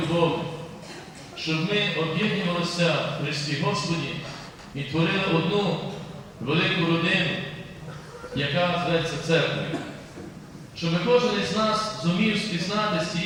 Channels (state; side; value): identical; both; correlation 1.00